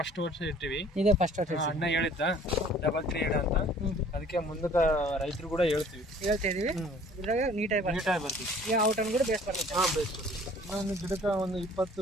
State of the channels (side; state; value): both; normal; correlation 0.53